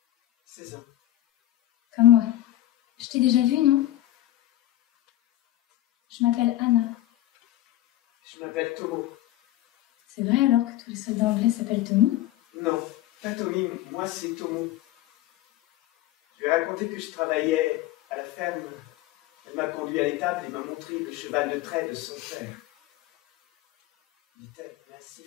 16 ans. Comme moi. Je t'ai déjà vu, non? Je m'appelle Anna. Je m'appelle Tomo. C'est vrai alors que tous les soldats anglais s'appellent Tommy? Non, pas Tommy, moi c'est Tomo. Je lui ai raconté que je travaillais à la ferme. Elle m'a conduit à l'étable et m'a montré le cheval de trait de son père. Il était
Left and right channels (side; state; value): right; quieter; 14.3 dB